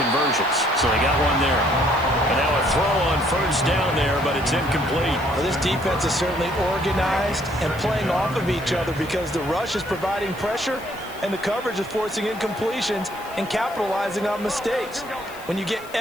So they got one there. And now a throw on first down there, but it's incomplete. Well, this defense is certainly organized and playing off of each other because the rush is providing pressure and the coverage is forcing incompletions and capitalizing on mistakes. When you get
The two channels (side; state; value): left; noise; hiss, 21 dB below the sound